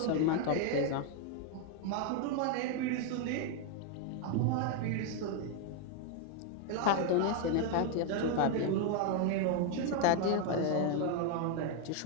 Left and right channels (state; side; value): different; both; correlation 0.01